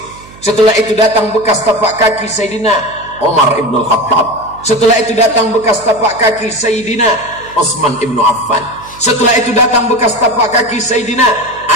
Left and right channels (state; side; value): noise; right; hum, 21 dB below the sound